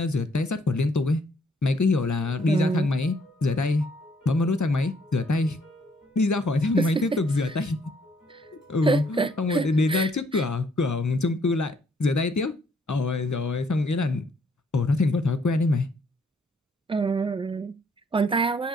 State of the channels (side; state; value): both; normal; correlation 0.67